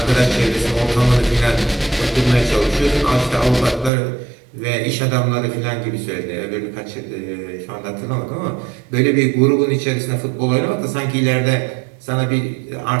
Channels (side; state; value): left; drops out; at 3.9 s